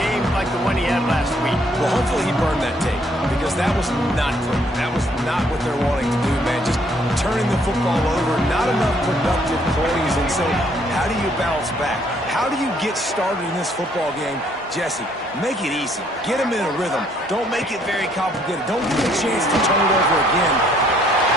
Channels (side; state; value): both; normal; correlation 0.66